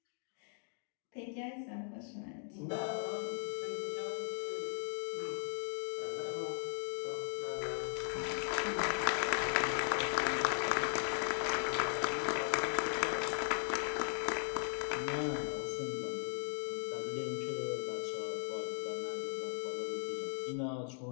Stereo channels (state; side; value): silent; right; 52 dB below the other